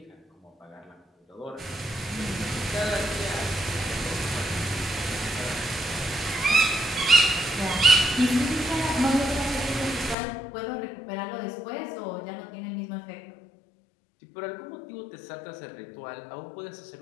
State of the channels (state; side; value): drops out; right; at 10.2 s